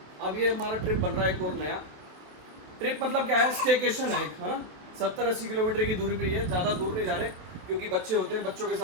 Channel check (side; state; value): left; late; 27 ms